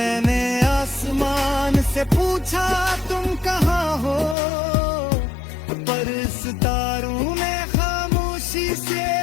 आसमान से पूछा तुम कहाँ हो, पर सितारों ने खामोशी से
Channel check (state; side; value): drops out; right; at 4.4 s